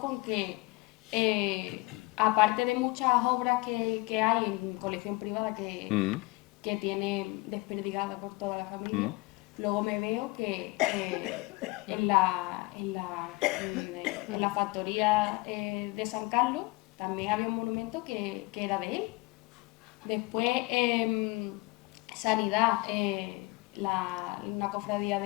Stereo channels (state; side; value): quieter; right; 23.9 dB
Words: que, aparte de muchas obras que hay en colección privada que tiene desperdigada por toda la familia, luego me veo que en la factoría de San Carlos también había un monumento que era de él. Después, Sanidad, una cofradía